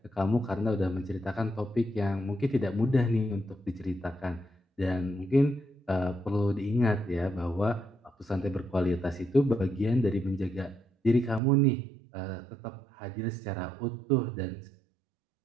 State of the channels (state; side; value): drops out; left; at 11.4 s